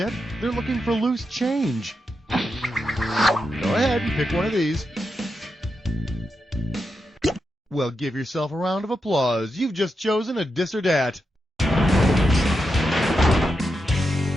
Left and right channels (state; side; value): normal; both; correlation 0.86